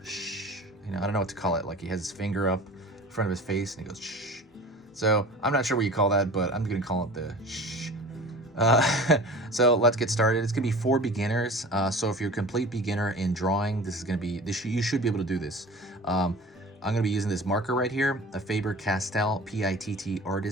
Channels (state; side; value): normal; both; correlation 0.40